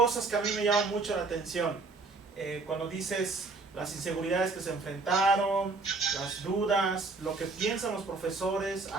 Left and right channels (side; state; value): left; quieter; 3.8 dB